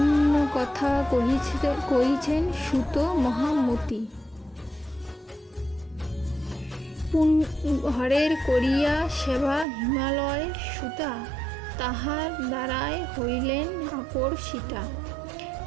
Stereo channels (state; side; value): drops out; left; at 9.7 s